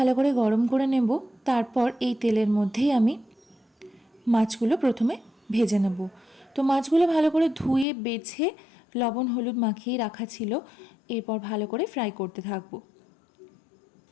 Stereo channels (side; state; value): right; drops out; at 7.9 s